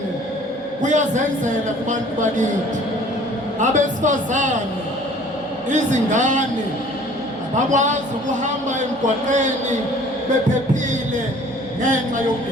kuyazenzela kubantu bakithi, abesifazane, izingane abakwazi ukuhamba emgwaqeni bephephile ngenxa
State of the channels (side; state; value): both; normal; correlation 0.51